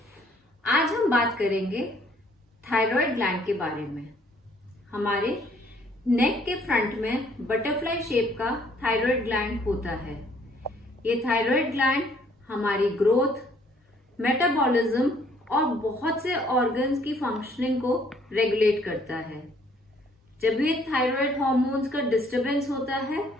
आज हम बात करेंगे थायराइड ग्लैंड के बारे में। हमारे नेक के फ्रंट में बटरफ्लाई शेप का थायराइड ग्लैंड होता है। ये थायराइड ग्लैंड हमारी ग्रोथ, मेटाबॉलिज्म और बहुत से ऑर्गन्स की फंक्शनिंग को रेगुलेट करता है। जब ये थायराइड हार्मोन्स का डिस्टरबेंस होता है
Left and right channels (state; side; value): normal; both; correlation 0.63